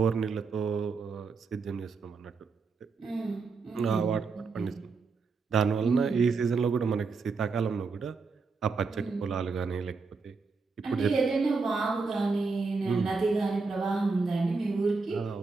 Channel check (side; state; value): left; quieter; 4.5 dB